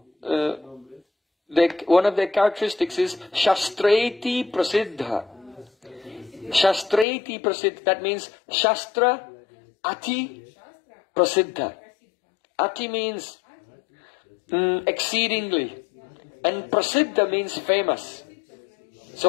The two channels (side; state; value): right; drops out; at 7.1 s